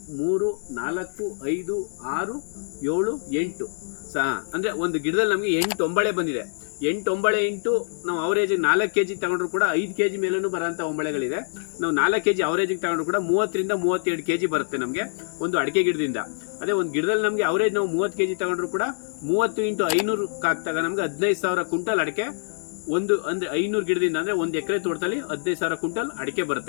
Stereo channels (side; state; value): right; silent; digital silence